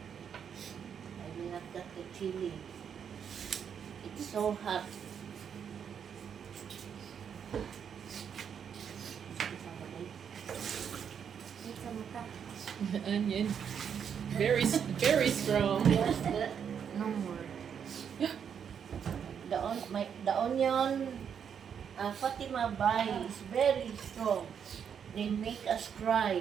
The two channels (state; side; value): quieter; left; 7.7 dB